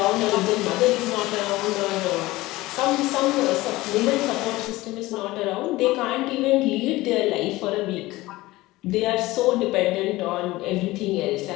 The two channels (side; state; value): right; quieter; 19.0 dB